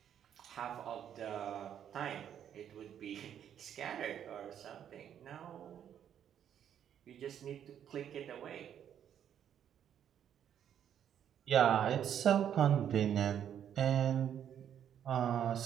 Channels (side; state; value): left; quieter; 9.4 dB